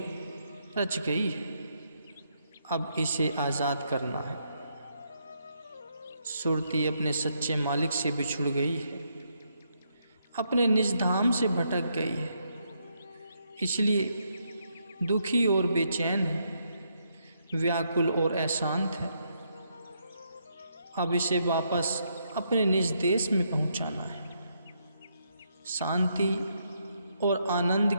रच गई है। अब इसे आज़ाद करना है। सुरती अपने सच्चे मालिक से बिछुड़ गई है, अपने निज धाम से भटक गई है, इसलिए दुखी और बेचैन है, व्याकुल और अशांत है। अब इसे वापस अपने निज देश में पहुंचाना है, शांति और आनंद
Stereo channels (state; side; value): inverted; both; correlation -0.77